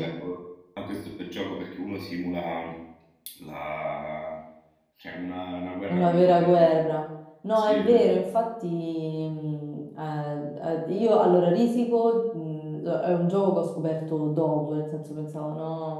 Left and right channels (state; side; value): identical; both; correlation 1.00